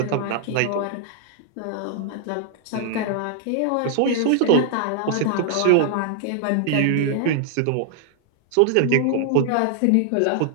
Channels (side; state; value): both; different; correlation 0.00